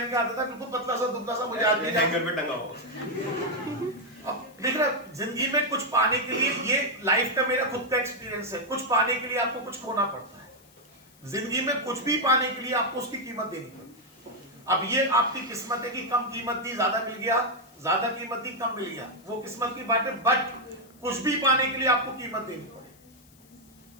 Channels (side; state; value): left; noise; hiss, 28 dB below the sound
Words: के आता था, बिल्कुल पतला सा दुबला सा, मुझे आज भी हैंगर पे टंगा हो। अब देख रहा, जिंदगी में कुछ पाने के लिए, ये लाइफ का मेरा खुद का एक्सपीरियंस है, कुछ पाने के लिए आपको कुछ खोना पड़ता है। जिंदगी में कुछ भी पाने के लिए आपको उसकी कीमत देनी पड़ती है। अब ये आपकी किस्मत है कि कम कीमत दी ज्यादा मिल गया, ज्यादा कीमत दी कम मिल गया, वो किस्मत की बात है, बट कुछ भी पाने के लिए आपको कीमत देनी